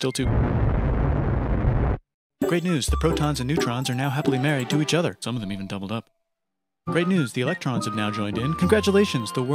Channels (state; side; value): identical; both; correlation 1.00